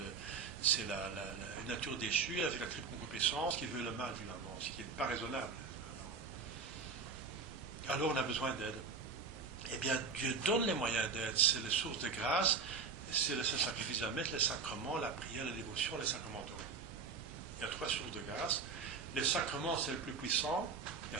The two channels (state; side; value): quieter; left; 5.1 dB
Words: c'est la nature déchue avec la triple concupiscence qui veut le mal, finalement, ce qui n'est pas raisonnable. Alors on a besoin d'aide. Eh bien, Dieu donne les moyens d'aide. C'est les sources de grâce, c'est le sacrifice à mettre, les sacrements, la prière, la dévotion, les sacramentaux. Il y a 3 sources de grâce. Les sacrements, c'est le plus puissant. Il y